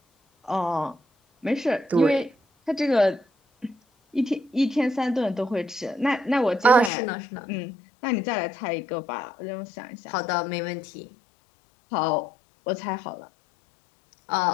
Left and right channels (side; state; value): right; drops out; at 6.9 s